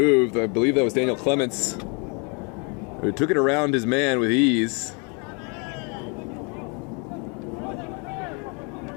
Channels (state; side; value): quieter; right; 34.1 dB